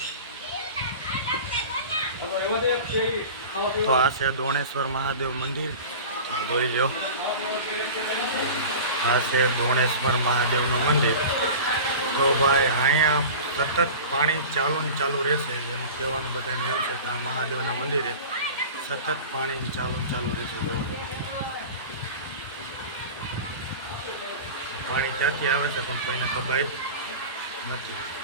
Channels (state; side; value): inverted; both; correlation -0.35